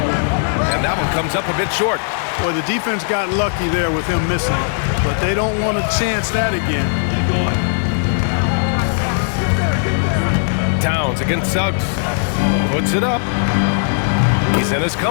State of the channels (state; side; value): silent; right; digital silence